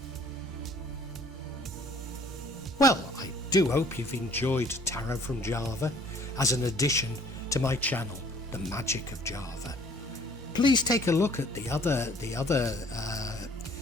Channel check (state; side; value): normal; both; correlation 0.56